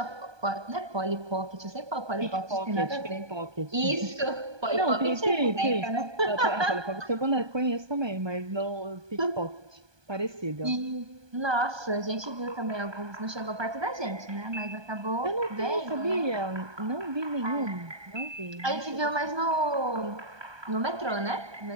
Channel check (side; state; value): left; late; 1.2 ms